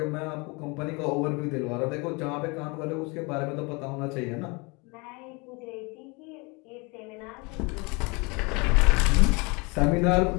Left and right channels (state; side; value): quieter; right; 28.5 dB